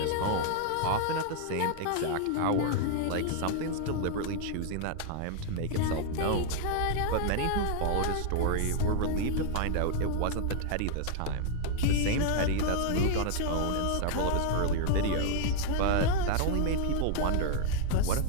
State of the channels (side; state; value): both; different; correlation 0.00